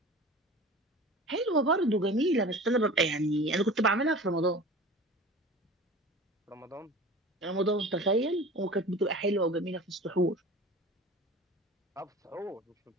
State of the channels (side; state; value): both; normal; correlation 0.38